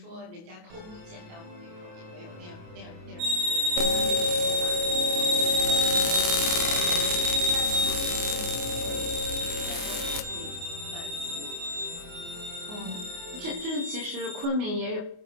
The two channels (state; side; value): late; left; 28 ms